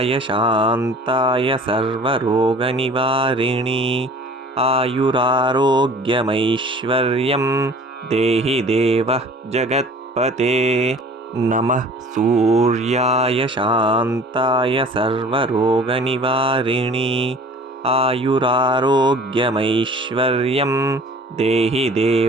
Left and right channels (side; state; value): both; normal; correlation 0.46